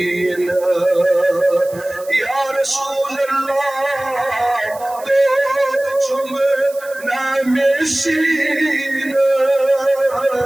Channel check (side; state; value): right; noise; hiss, 20 dB below the sound